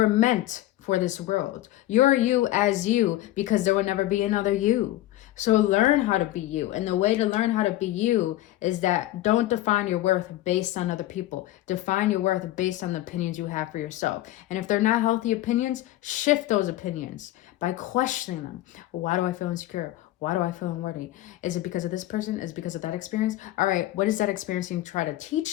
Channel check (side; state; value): right; quieter; 15.3 dB